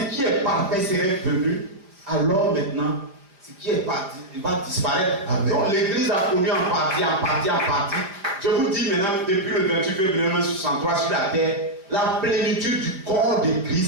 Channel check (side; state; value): left; late; 5.0 ms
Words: qui est parfait serait venu, alors maintenant, ce qui est parti, il va disparaître. Amen. Donc l'église a connu en partie. Je vous dis maintenant, depuis le 28 février 1963 sur la terre, la plénitude du corps de